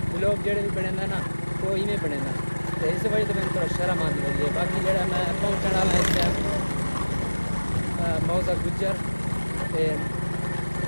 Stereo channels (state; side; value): inverted; both; correlation -1.00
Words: ولاگ جڑے بھی بنے نا تو ایویں بنے نا. تو اس وجہ سے میں تھوڑا شرم آتی رہی ہے. باقی جڑا میں پہنچنے والا اس ٹائم موزہ گجر